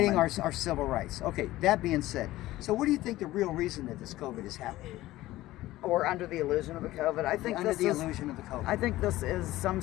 woman. our civil rights. Okay, that being said, so what do you think the real reason that this COVID is happening? Or under the illusion of the COVID. I think Under this the is. illusion of the COVID. I think this is some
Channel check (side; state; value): right; quieter; 16.5 dB